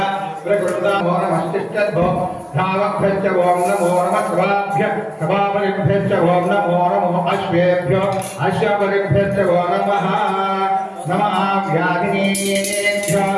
प्रकृतामो नमस्तिष्ठद्भो धावभ्यश्च ओं नमो नमः सभाभ्यः सभापरिभ्यश्च ओं नमो नमो अश्वेभ्यो अश्वपरिभ्यश्च ओं नमः नमः व्याधिनेभ्यो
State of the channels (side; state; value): both; identical; correlation 1.00